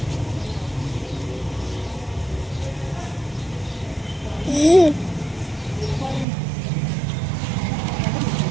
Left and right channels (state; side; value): drops out; left; at 6.2 s